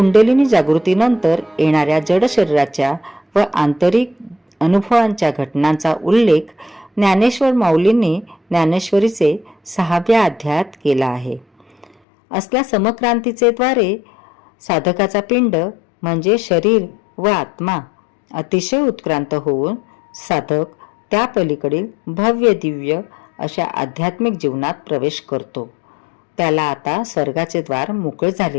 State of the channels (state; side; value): drops out; right; at 11.9 s